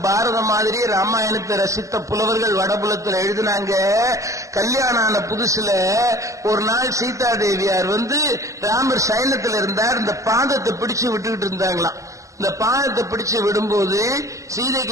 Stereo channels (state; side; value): late; left; 0.16 ms